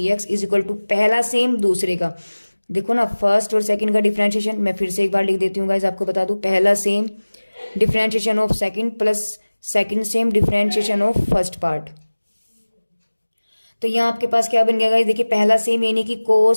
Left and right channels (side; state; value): both; inverted; correlation -1.00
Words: is equal to पहला सेम दूसरे का। देखो ना फर्स्ट और सेकंड का डिफरेंशिएशन, मैं फिर से एक बार लिख देती हूँ गाइस, आपको बता दूं, पहला same differentiation of second plus second same differentiation of first part. तो यहाँ आपके पास क्या बन गया गाइस, देखिए पहला सेम यानी कि